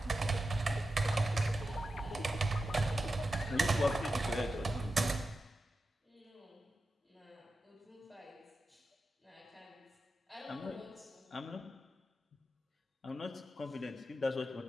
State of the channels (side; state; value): both; normal; correlation 0.91